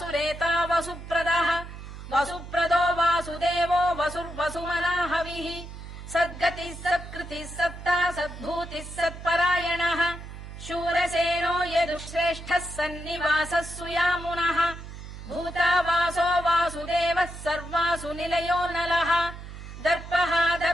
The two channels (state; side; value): noise; right; hum, 12 dB below the sound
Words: वसुप्रदः वसुप्रदो वासुदेवो वसुर्वसुमनाहविः सद्गतिः सत्कृतिः सत्ता सद्भूतिः सत्परायणः शूरसेनो यदुश्रेष्ठः सन्निवासः सुयामुनः भूतावासो वासुदेवः सर्वासु निलयो नलः दर्पः